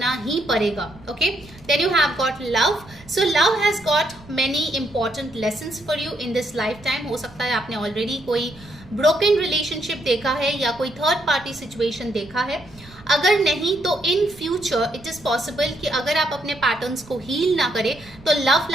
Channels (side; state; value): right; noise; rumble, 22 dB below the sound